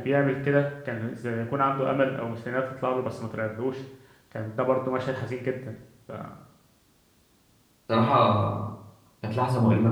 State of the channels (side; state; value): both; identical; correlation 1.00